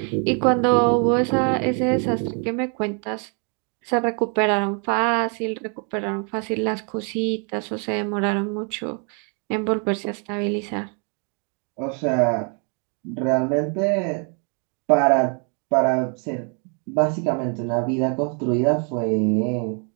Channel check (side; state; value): left; quieter; 39.4 dB